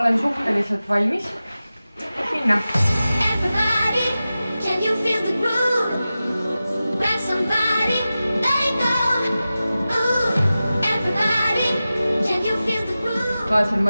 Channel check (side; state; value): both; inverted; correlation -0.95